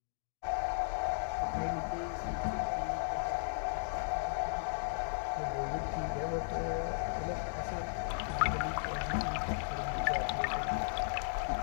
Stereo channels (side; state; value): right; silent; digital silence